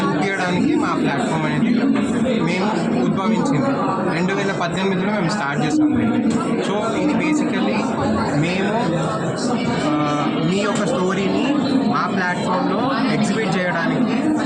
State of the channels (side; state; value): both; identical; correlation 1.00